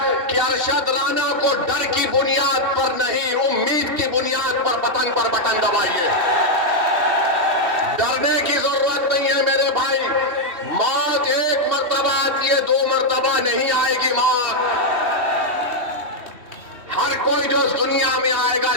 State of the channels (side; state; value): left; late; 3.1 ms